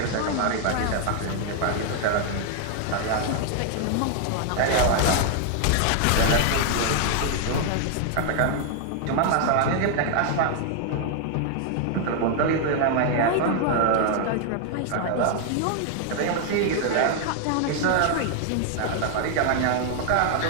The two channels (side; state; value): both; different; correlation 0.00